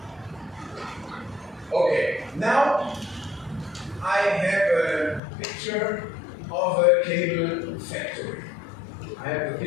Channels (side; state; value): right; drops out; at 5.2 s